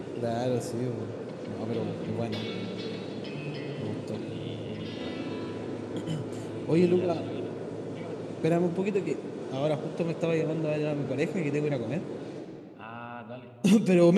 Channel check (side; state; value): both; identical; correlation 1.00